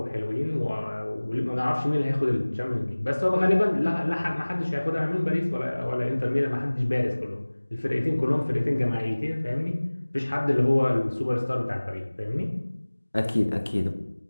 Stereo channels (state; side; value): inverted; both; correlation -1.00